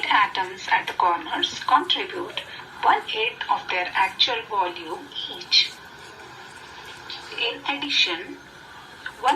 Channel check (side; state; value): both; identical; correlation 1.00